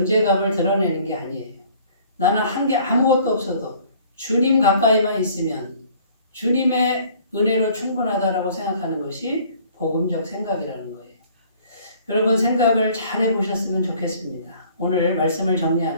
드러내는 게 아니에요. 나는 한 게 아무것도 없어도 주님 가까이만 있으면 주님의 은혜로 충분하다라고 생각하는 것이 복음적 생각이라는 거예요. 여러분 생각을 잘 해보셨으면 좋겠습니다. 오늘 말씀을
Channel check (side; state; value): both; inverted; correlation -0.55